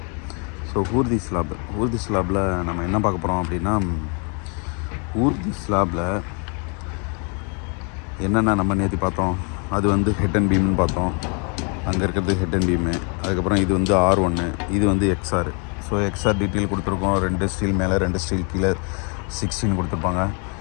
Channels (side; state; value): right; quieter; 36.5 dB